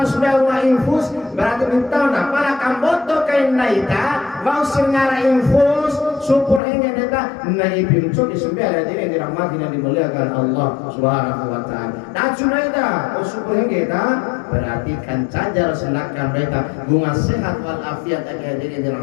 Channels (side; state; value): right; drops out; at 6.6 s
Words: wa infus berarti minta na para kamboto kain naita mau sengara infus syukur hingga data naibin cok di sembilan ini dirahmati dan dimuliakan Allah Subhanahu wa taala. Dacu naita syukur hingga data berarti kan cajar selakan mereka bunga sehat walafiat agar diri